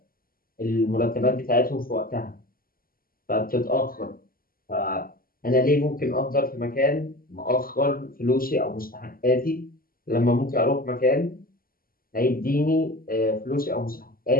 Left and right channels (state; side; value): late; right; 0.42 ms